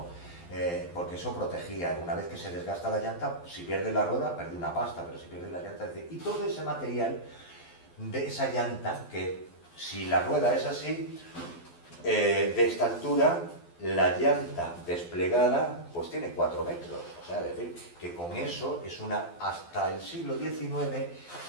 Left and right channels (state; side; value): late; right; 12 ms